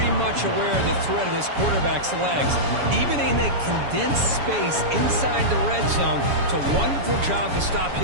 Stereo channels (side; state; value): left; late; 7.1 ms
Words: much aware of the threat of this quarterback's legs. Even in a condensed space inside the red zone, it's a wonderful job to stop